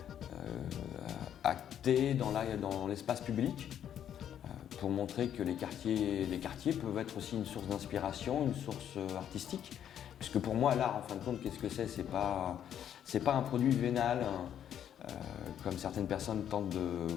acter dans l'espace public pour montrer que les quartiers peuvent être aussi une source d'inspiration, une source artistique. Puisque pour moi, l'art, en fin de compte, qu'est-ce que c'est ? C'est pas un produit vénal, comme certaines personnes tentent de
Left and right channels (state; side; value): quieter; right; 9.8 dB